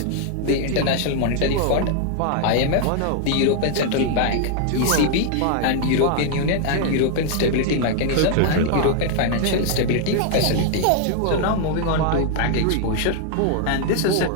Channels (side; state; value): both; different; correlation 0.00